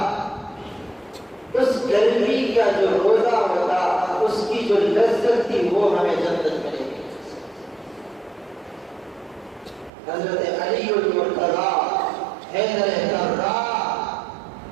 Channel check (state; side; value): drops out; left; at 9.9 s